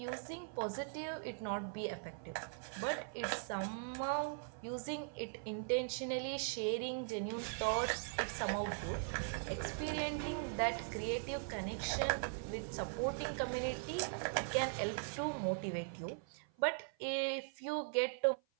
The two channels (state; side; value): silent; left; 51 dB below the other